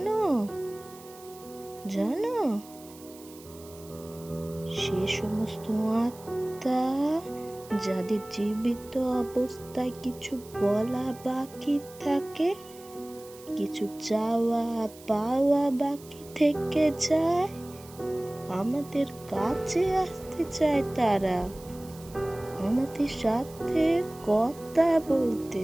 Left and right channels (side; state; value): right; noise; hiss, 21 dB below the sound